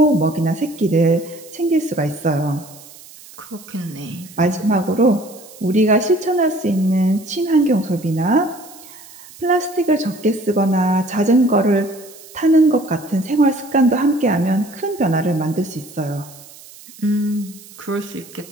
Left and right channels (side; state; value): right; noise; hiss, 20 dB below the sound